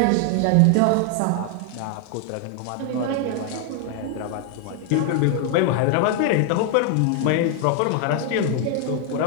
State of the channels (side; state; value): both; different; correlation 0.00